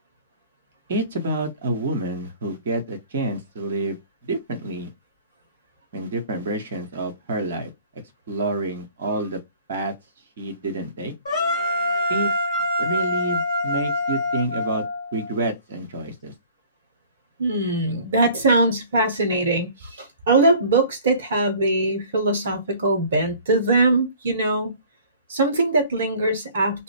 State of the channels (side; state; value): both; inverted; correlation -0.50